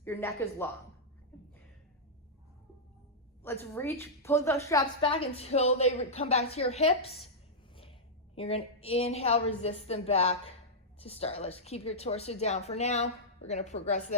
Your neck is long. Let's pull those straps back until they come back to your hips. You're gonna inhale, resist them back to start. Let's keep your torso down for now. We're gonna progress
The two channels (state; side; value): normal; both; correlation -0.09